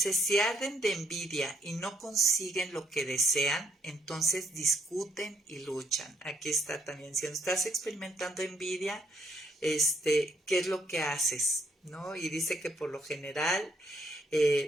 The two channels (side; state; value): both; normal; correlation 0.72